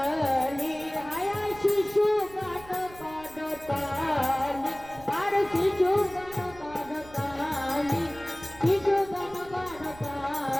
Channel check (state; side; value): noise; right; rumble, 20 dB below the sound